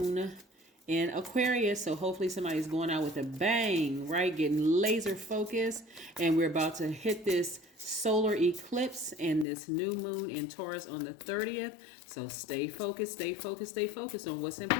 in Aquarius. So hopefully somebody's going out with a bang, right? Getting laser focused. And we're about to hit this solar eclipse and this new moon in Taurus on the 30th. So stay focused, stay focused, stay focused on what's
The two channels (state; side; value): drops out; right; at 9.5 s